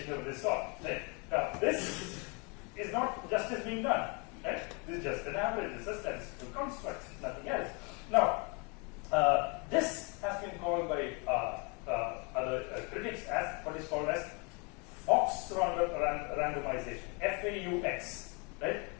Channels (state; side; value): quieter; right; 32.2 dB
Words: of this sort. Right? Now, this is not justice being done. Right? This is just an average. This is a statistical construct, nothing else. Now, this has been called by other critics as what is called as Fox randomization, FAUX, right?